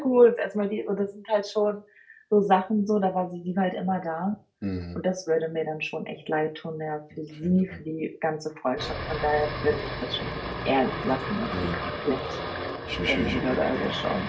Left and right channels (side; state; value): both; identical; correlation 1.00